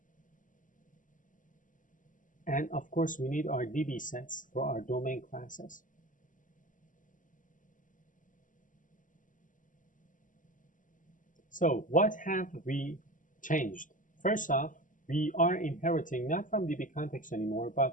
And of course, we need our DB sets for our domain classes. So what have we changed? First off, we are inheriting not from DB context anymore,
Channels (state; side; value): late; right; 0.38 ms